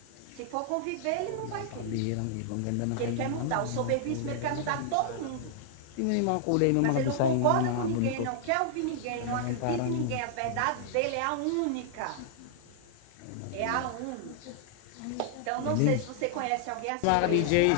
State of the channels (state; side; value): different; both; correlation -0.01